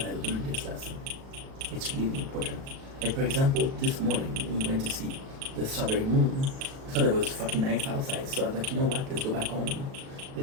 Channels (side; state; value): left; late; 37 ms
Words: I learned this lesson. It's really important. Like, for example, this morning we went to see the strawberry moon. I thought it was fucking nice outside, so I was like, you know what? Let's go back home.